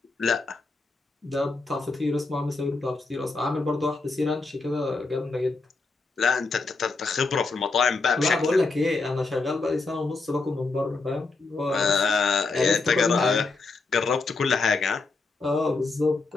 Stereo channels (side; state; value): right; quieter; 3.8 dB